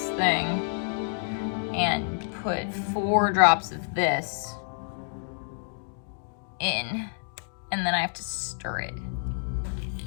thing and put 4 drops of this in, and then I have to stir it.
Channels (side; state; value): right; silent; digital silence